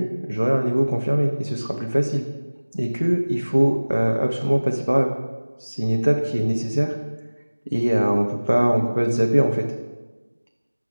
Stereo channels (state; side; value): inverted; both; correlation -1.00